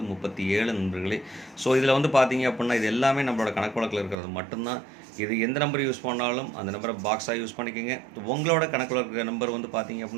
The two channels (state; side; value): drops out; left; at 4.2 s